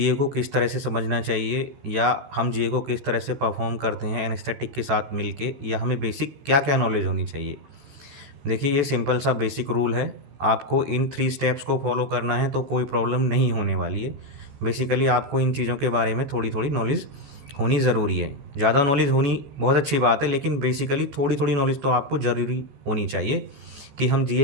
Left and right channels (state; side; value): late; left; 14 ms